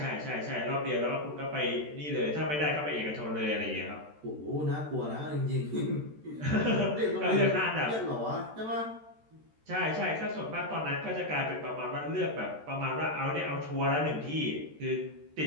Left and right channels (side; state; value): left; late; 13 ms